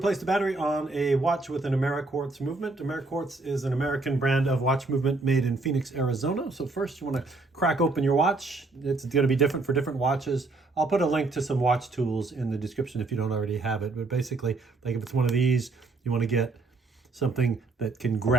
the battery on a watch with an Ameriquartz movement. Ameriquartz is an American brand of watch movement made in Phoenix, Arizona. So first you want to crack open your watch. It's going to be different for different watches. I'll put a link to some watch tools in the description if you don't already have it. But basically, like if it's one of these, you want to get something that can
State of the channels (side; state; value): left; quieter; 3.4 dB